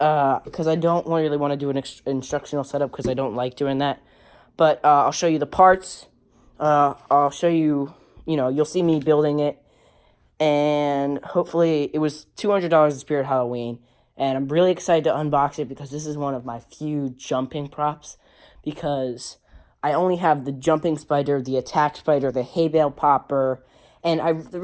I don't really want to do an instructional setup because I don't like doing that. But I'll show you the parts. I'll show you, you'll see me building it, and hopefully it was $200 at Spirit Halloween, and I'm really excited to unbox it because this is one of my few jumping props, because I only have the jumping spider, the attack spider, the hay bale popper, and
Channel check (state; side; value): identical; both; correlation 1.00